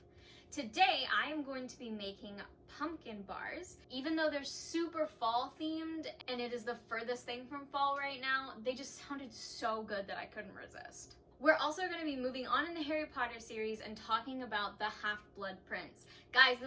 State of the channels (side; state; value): both; identical; correlation 1.00